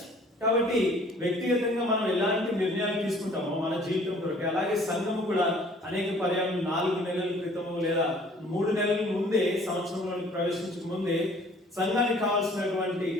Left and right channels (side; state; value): both; normal; correlation 0.54